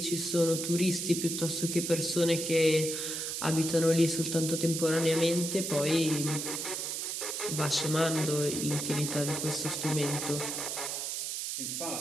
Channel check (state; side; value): noise; right; hiss, 3 dB below the sound